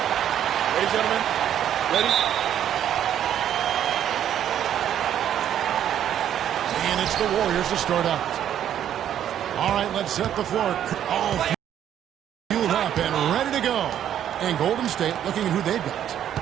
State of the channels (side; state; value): left; quieter; 10.3 dB